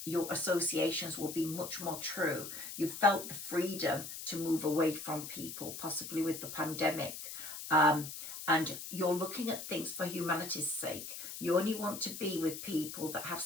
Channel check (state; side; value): noise; left; hiss, 9 dB below the sound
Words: associations will be much more true. You felt the freedom to move away from people, possibly with the pandemic. And you're looking at things for humanity's sake. You only want to be with people that have